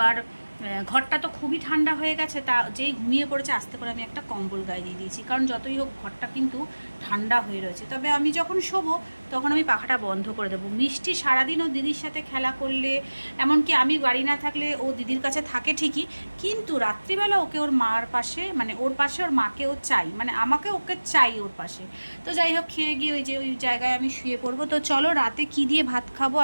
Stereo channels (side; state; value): both; inverted; correlation -1.00